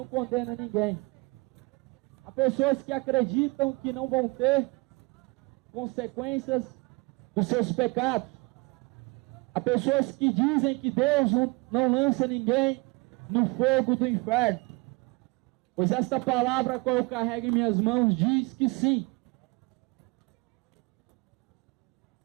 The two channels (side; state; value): left; quieter; 26.7 dB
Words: condena ninguém. Há pessoas que acreditam que não vão ter consequências dos seus pecados. Há pessoas que dizem que Deus não lança ninguém no fogo do inferno. Pois esta palavra, qual eu carrego em minhas mãos, diz que sim.